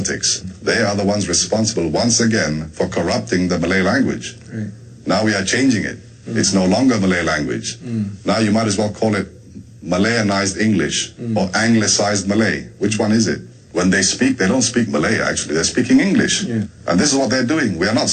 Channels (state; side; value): identical; both; correlation 1.00